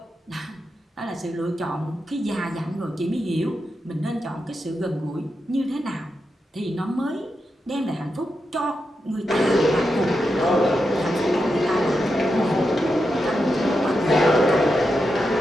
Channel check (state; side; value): normal; both; correlation 0.87